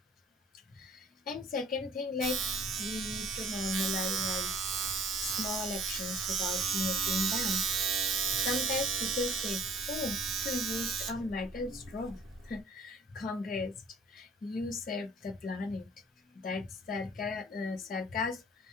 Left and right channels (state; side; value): normal; both; correlation 0.52